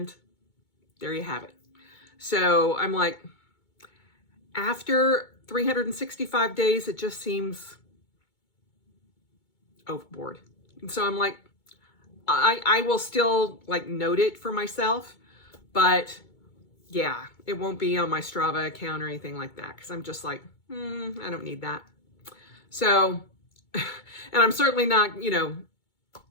there you have it. So I'm like, after 365 days, it just seems overboard. And so I'm like, I will still like note it for myself, but yeah, it won't be on my Strava account or anything like that, because I'm just like, I don't need that. So, and I'm certainly not,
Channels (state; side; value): late; right; 2.2 ms